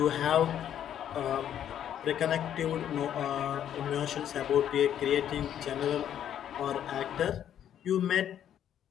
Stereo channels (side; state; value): right; quieter; 10.1 dB